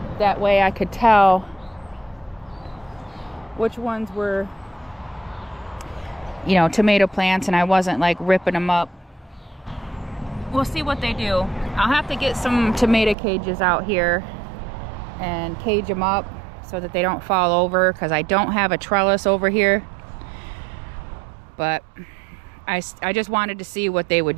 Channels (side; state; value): left; drops out; at 13.2 s